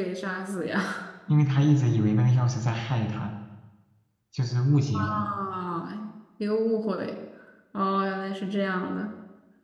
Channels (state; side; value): identical; both; correlation 1.00